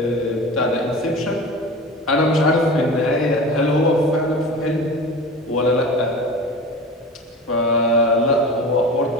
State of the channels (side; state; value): both; normal; correlation 0.34